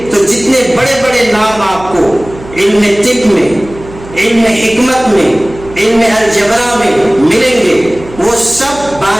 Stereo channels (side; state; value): right; noise; hum, 17 dB below the sound